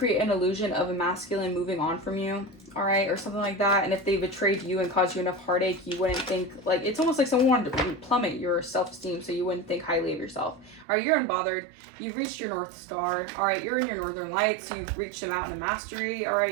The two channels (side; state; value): left; drops out; at 10.9 s